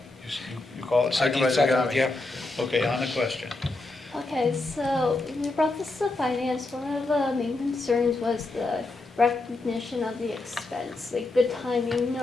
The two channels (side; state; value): right; quieter; 3.1 dB